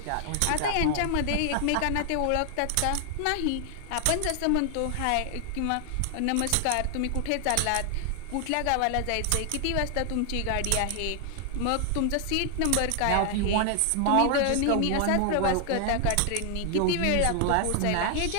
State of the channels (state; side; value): different; both; correlation 0.00